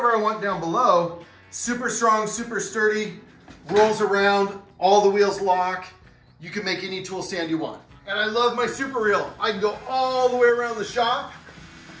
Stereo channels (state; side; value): identical; both; correlation 1.00